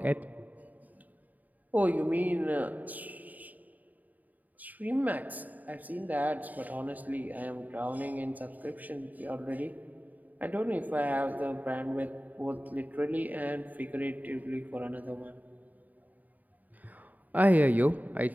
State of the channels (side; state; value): left; late; 0.079 ms